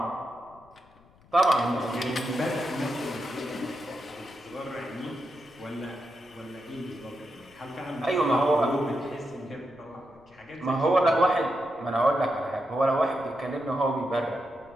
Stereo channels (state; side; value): noise; left; rumble, 28 dB below the sound